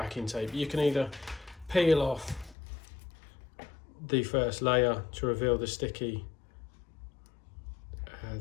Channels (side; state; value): right; drops out; at 2.6 s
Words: tape. You can either peel off the first layer to reveal the sticky